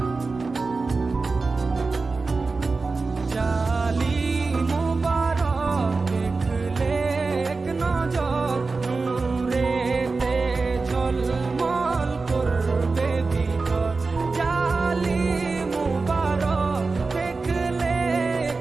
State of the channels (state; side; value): quieter; left; 4.0 dB